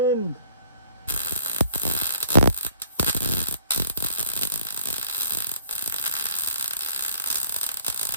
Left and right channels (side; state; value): both; inverted; correlation -0.60